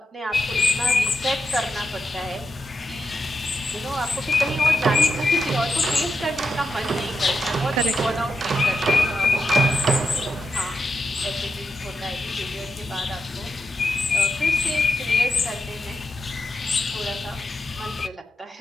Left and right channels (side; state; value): both; normal; correlation 0.86